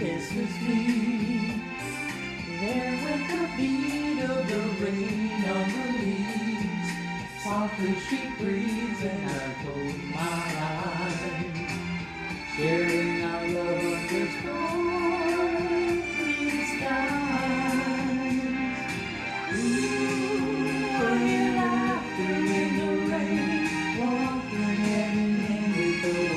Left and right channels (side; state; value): both; identical; correlation 1.00